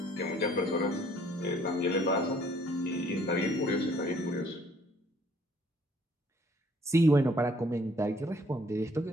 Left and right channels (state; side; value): normal; both; correlation 0.61